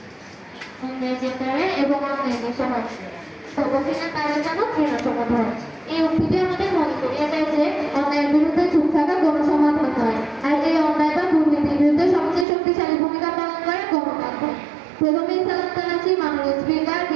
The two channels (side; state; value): left; drops out; at 12.5 s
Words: এবং এই উক্তিটি আমাদের মনে করিয়ে দেয় যে অন্যায়ের বিরুদ্ধে চুপ থাকা গণসমাধান নয়, আর এই অন্যায় বা দুর্নীতির বিরুদ্ধে সবচেয়ে শক্তিশালী ভূমিকা পালন করে গণমাধ্যম। প্রথমে সালাম জানাচ্ছি মাননীয় স্পিকার,